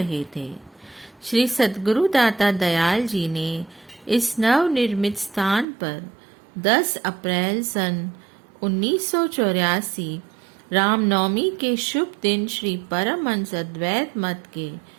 थे। श्री सद्गुरु दाता दयाल जी ने इस नवनिर्मित स्थान पर 10 अप्रैल सन 1984 रामनवमी के शुभ दिन श्री परमहंस अद्वैत मत के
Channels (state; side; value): drops out; left; at 5.7 s